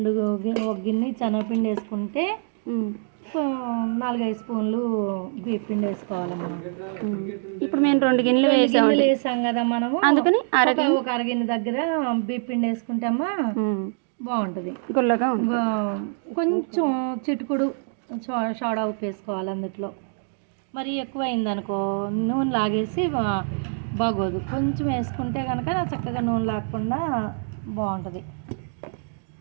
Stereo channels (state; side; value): silent; left; digital silence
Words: ఒక గిన్నె శనగపిండి వేసుకుంటే 4-5 స్పూన్లు బియ్య పిండి వేసుకోవాలమ్మా. ఇప్పుడు మేము 2 గిన్నెలు వేసాం కదా మనము, అందుకని ఒక అరగిన్నె దగ్గర బియ్య పిండి వేసుకుంటామా బాగుంటుంది, గుల్లగా. కొంచెం చిటుకుడు సోడా ఉప్పు వేసుకోవాలి అందులో. మరి ఎక్కువ అయిందనుకో నూనె లాగేసి బాగోదు, కొంచెం వేసుకుంటే కనుక చక్కగా నూనె లాగకుండా బాగుంటుంది.